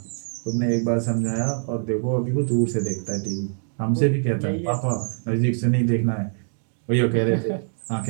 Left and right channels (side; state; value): left; silent; digital silence